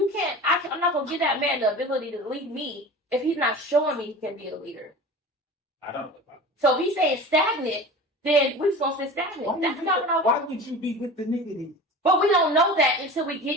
can't. I'm not gonna give that man the ability to lead me if he's not showing me he can be a leader. I don't. So if he's saying stagnant, then we're supposed to stay stagnant. That's not what I want. Why would you be with the nigga then? But we don't know that until we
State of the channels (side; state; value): both; normal; correlation 0.35